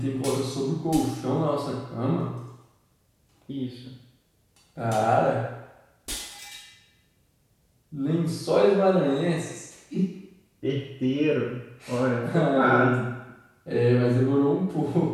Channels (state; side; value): identical; both; correlation 1.00